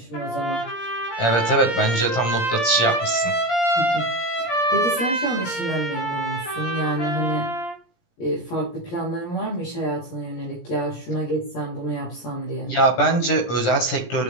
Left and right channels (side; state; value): right; late; 17 ms